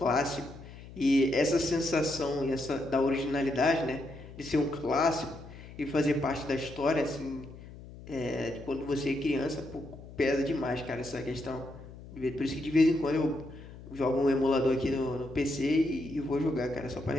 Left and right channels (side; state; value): left; noise; hum, 16 dB below the sound